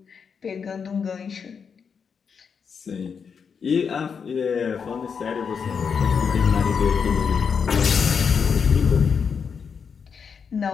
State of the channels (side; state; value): right; quieter; 6.3 dB